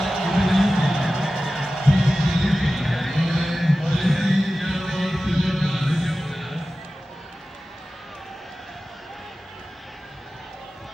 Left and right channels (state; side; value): normal; both; correlation 0.95